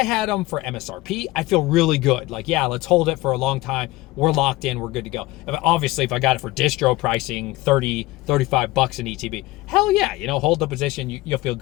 had them for MSRP, I feel really good. Like, yeah, let's hold it for a long time. We're locked in. We're good to go. Obviously, if I got it for distro pricing, 30, 35 bucks an ETB, hell yeah, you know, hold the position. You'll feel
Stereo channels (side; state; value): right; quieter; 19.1 dB